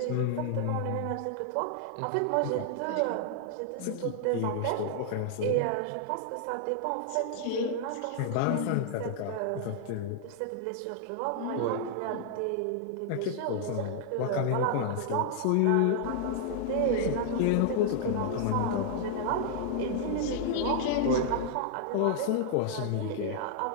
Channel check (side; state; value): both; different; correlation -0.01